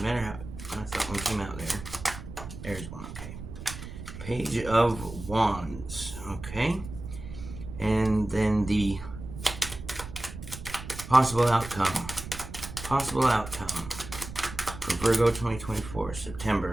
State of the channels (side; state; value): right; noise; rumble, 11 dB below the sound